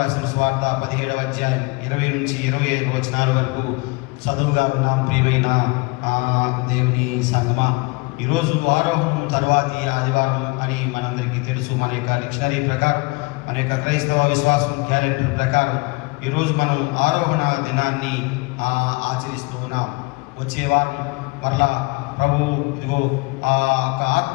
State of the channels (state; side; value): quieter; right; 26.8 dB